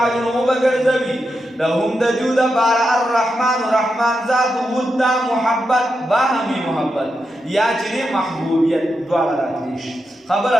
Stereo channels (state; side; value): normal; both; correlation 0.86